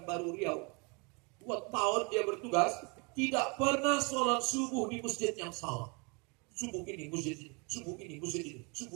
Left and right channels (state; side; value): quieter; left; 31.6 dB